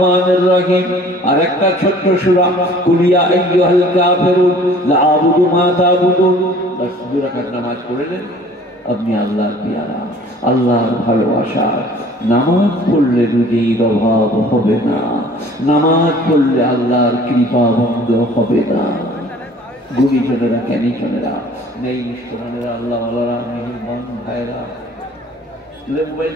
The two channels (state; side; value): normal; both; correlation 0.51